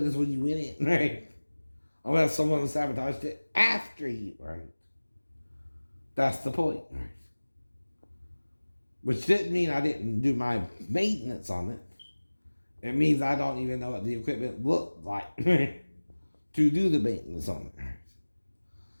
as when you went in, right? Unless someone sabotaged it after you, right? That's the point, right? Which didn't mean I didn't do my maintenance on it. It means I don't even know what the equipment looked like to do the maintenance on it.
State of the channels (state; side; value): inverted; both; correlation -1.00